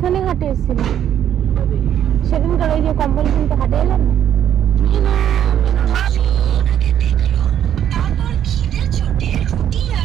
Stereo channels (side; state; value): left; quieter; 10.1 dB